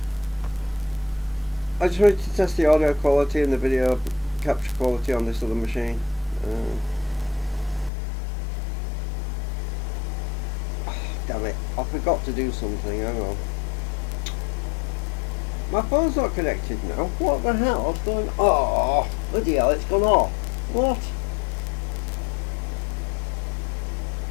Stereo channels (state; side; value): drops out; right; at 7.9 s